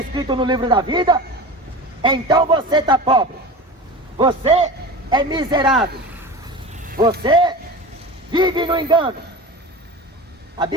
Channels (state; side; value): normal; both; correlation 0.31